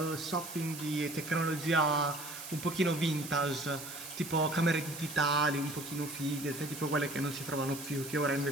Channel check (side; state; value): right; noise; hiss, 10 dB below the sound